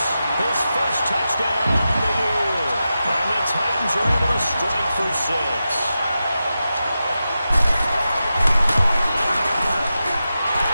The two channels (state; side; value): inverted; both; correlation -0.91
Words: his first touchdown on the year. And the Titans are able to strike for 6.